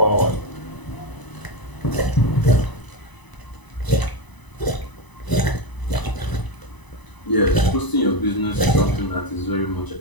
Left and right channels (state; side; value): late; right; 1.0 ms